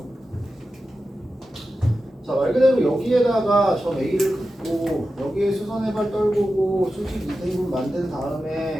자, 자, 말 그대로 여기에다가 저 A를 긋고 여기에 수선의 발 떨구고 수직 2등분 만든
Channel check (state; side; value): normal; both; correlation 0.92